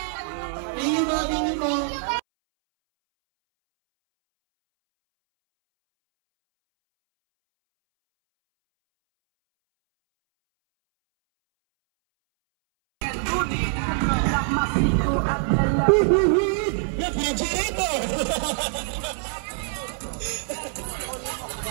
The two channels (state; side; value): silent; left; 62 dB below the other